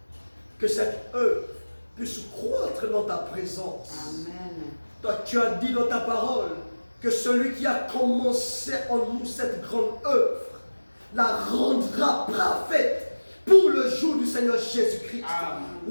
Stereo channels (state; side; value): inverted; both; correlation -1.00